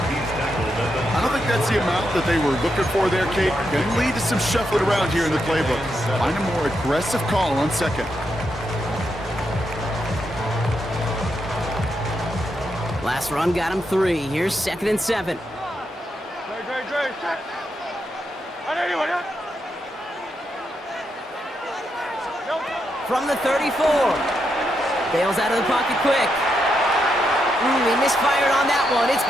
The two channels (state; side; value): normal; both; correlation 0.82